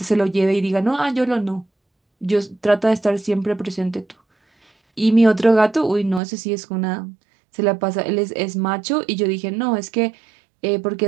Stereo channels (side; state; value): left; drops out; at 6.2 s